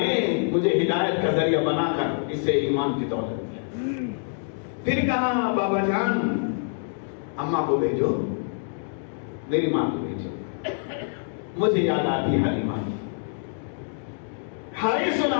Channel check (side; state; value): right; silent; digital silence